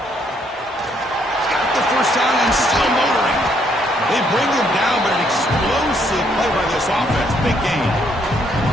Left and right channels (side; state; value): both; normal; correlation 0.70